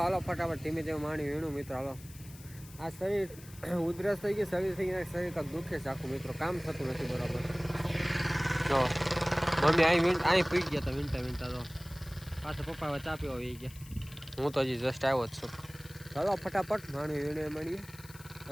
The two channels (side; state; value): left; noise; hiss, 20 dB below the sound